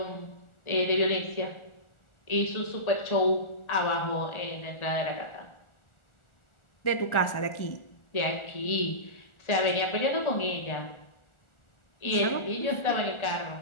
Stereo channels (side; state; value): right; late; 1.4 ms